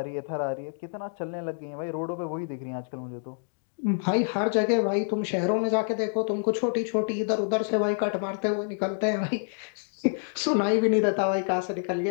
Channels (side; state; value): right; silent; digital silence